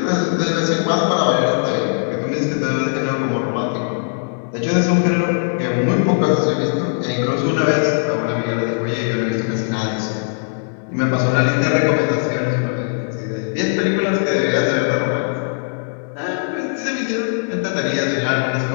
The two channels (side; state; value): right; silent; digital silence